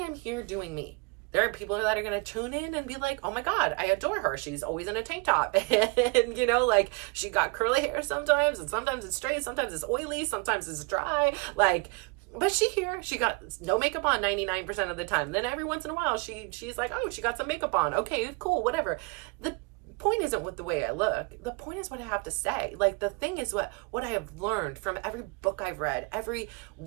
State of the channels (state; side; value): quieter; left; 28.4 dB